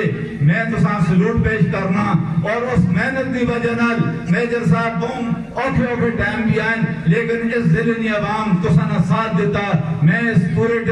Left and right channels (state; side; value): identical; both; correlation 1.00